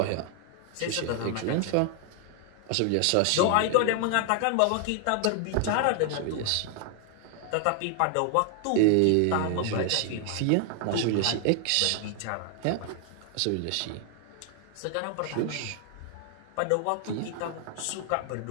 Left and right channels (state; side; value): different; both; correlation 0.00